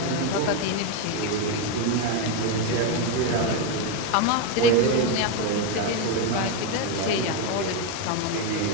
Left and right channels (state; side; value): different; both; correlation 0.03